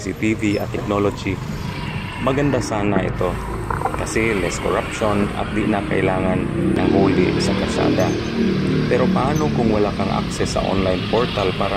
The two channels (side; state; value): both; identical; correlation 1.00